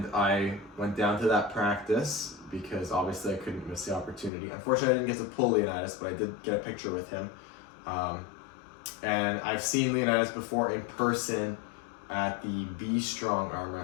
I went down to that practice because obviously I couldn't miss the opportunity. Unfortunately, I didn't get to pull Leonidas, but I did get a picture with him. And I've seen Leonidas before in person at the Be Strong arm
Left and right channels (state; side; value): drops out; right; at 4.3 s